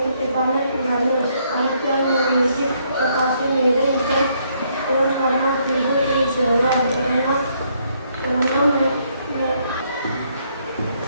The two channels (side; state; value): both; inverted; correlation -0.71